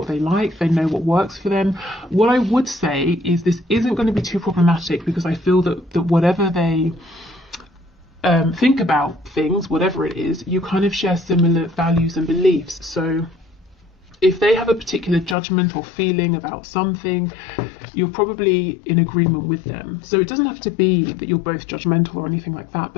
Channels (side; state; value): right; drops out; at 15.4 s